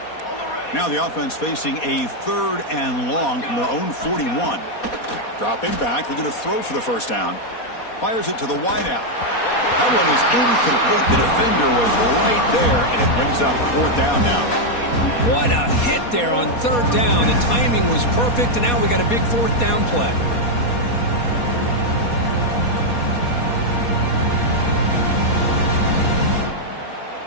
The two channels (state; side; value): late; right; 4.2 ms